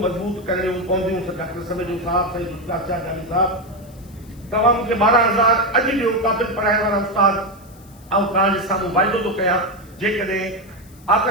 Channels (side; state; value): left; noise; hiss, 27 dB below the sound